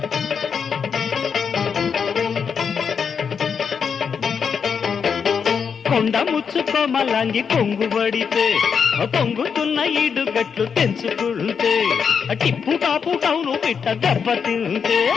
కొండ ముచ్చుకోమలాంగి కొంగు పడితే పొంగుతున్న ఈడుగట్లు తెంచుకుంటే, టిప్పు టాపు టౌను పిట్ట దెబ్బ తింటే,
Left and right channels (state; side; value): quieter; right; 6.5 dB